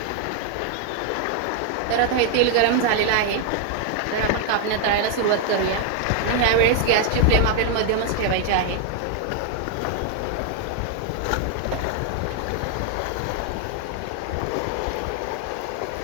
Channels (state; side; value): different; both; correlation 0.00